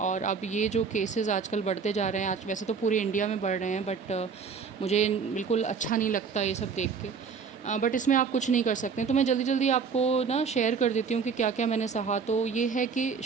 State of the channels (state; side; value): quieter; left; 5.7 dB